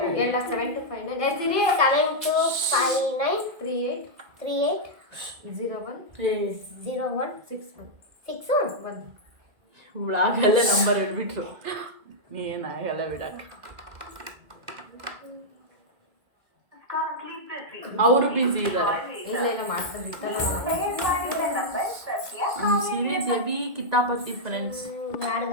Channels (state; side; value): late; left; 1.9 ms